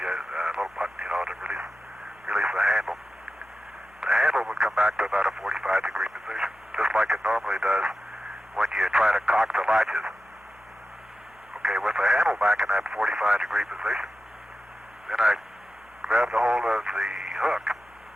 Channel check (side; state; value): left; noise; hum, 30 dB below the sound